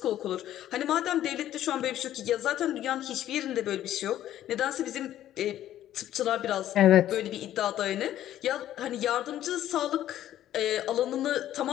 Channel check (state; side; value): quieter; right; 12.3 dB